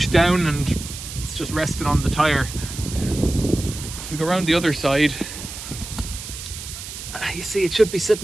down and it's just resting on the tyre. If we go around the other side, you see it should be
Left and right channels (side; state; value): right; noise; hiss, 10 dB below the sound